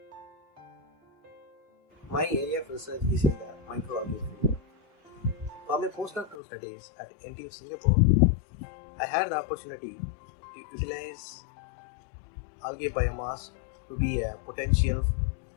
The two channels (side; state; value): right; drops out; at 6.4 s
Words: My area of research is in the microalgae field. For my postdoctoral studies at NTU Singapore, I had the opportunity to utilize algae biomass to be a potential